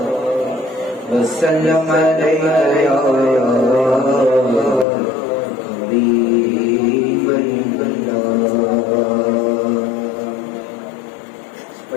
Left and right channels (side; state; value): right; drops out; at 4.9 s